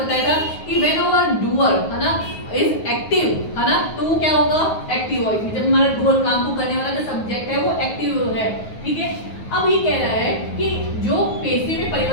बताया था कि व्हेन आवर डूअर, है ना, इज एक्टिव, है ना, तो वो क्या होगा, एक्टिव वॉइस में जब हमारा डूअर काम को करने वाला जो सब्जेक्ट है वो एक्टिव है, ठीक है। अब ये कह रहा है कि जो पैसिव में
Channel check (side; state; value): right; late; 9.4 ms